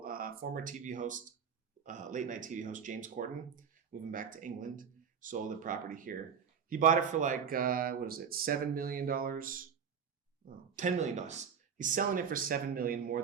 former TV host, late night TV host James Corden, moving back to England, sold a property here. He bought it for $7 million? Oh, $10 million. He's selling it for $7 million more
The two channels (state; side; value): quieter; left; 7.2 dB